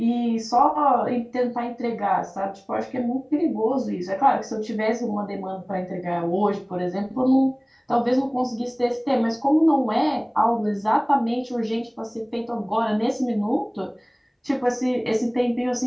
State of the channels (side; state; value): both; identical; correlation 1.00